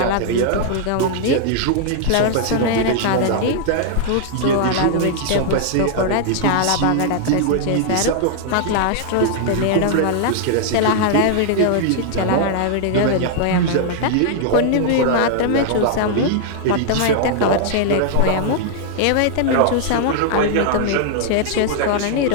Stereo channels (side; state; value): both; different; correlation 0.00